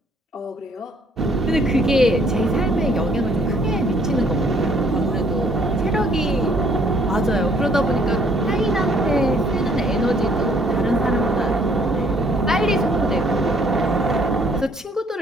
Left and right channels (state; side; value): normal; both; correlation 0.63